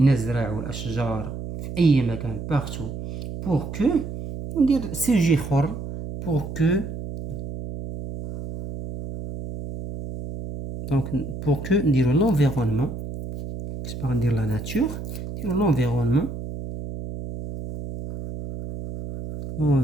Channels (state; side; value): noise; right; hum, 8 dB below the sound